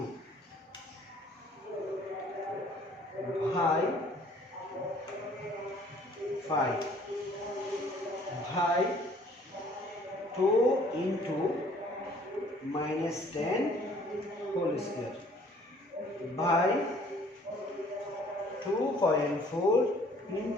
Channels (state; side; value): normal; both; correlation 0.57